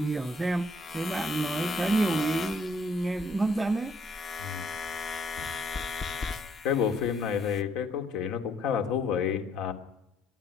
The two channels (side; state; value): both; normal; correlation 0.67